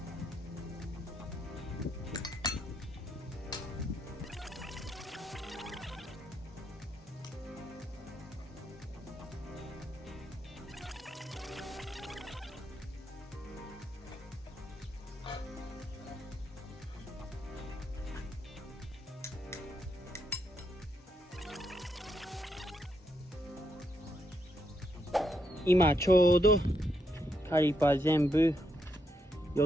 今ちょうどカリパー全部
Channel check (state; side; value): normal; both; correlation 0.79